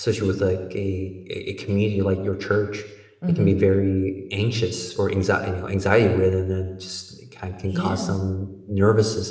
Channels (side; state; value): both; identical; correlation 1.00